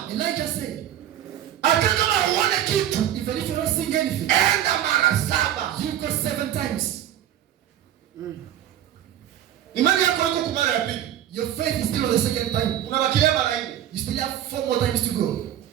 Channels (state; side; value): quieter; left; 11.3 dB